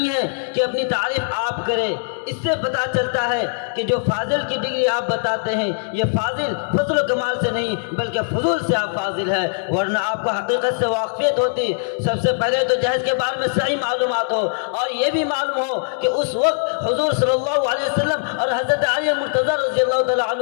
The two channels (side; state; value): right; silent; digital silence